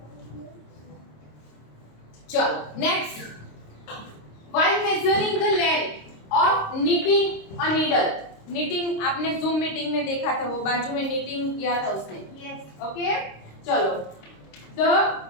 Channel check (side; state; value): right; late; 26 ms